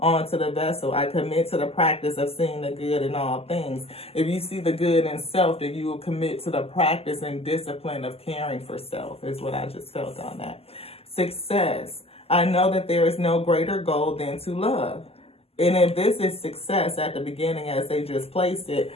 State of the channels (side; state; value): right; late; 0.29 ms